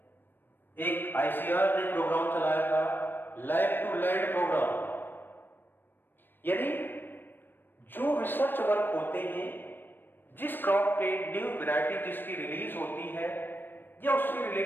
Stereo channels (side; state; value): right; late; 0.095 ms